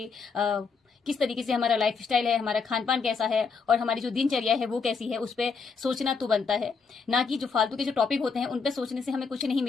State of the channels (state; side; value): quieter; right; 5.2 dB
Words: किस तरीके से हमारा लाइफ स्टाइल है, हमारा खान पान कैसा है और हमारी जो दिनचर्या है वो कैसी है, उस पर सोचना तो बनता है। ना कि जो फालतू के जो टॉपिक होते हैं उन पर सोचने से हमें कुछ नहीं